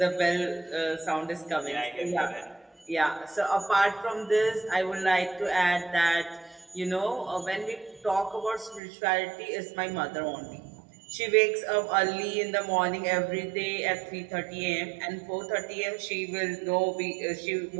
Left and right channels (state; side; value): drops out; left; at 8.8 s